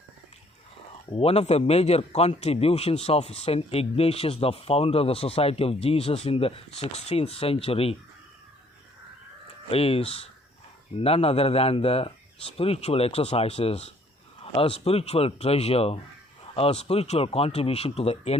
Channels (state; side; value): normal; both; correlation 0.62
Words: One of the major contributions of St. Ignatius, the founder of the Society of Jesus in the 16th century, is none other than the spiritual exercises, a spiritual treasure, a spiritual contribution to the